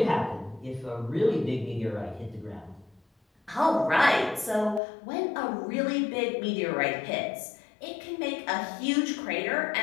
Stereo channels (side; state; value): right; drops out; at 4.8 s